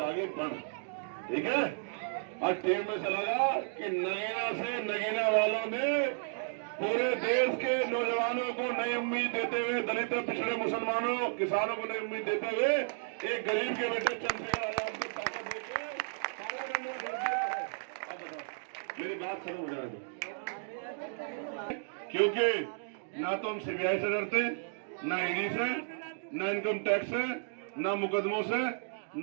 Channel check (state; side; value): silent; left; digital silence